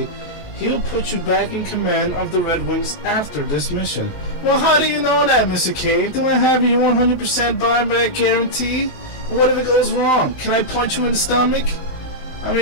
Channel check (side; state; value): right; late; 19 ms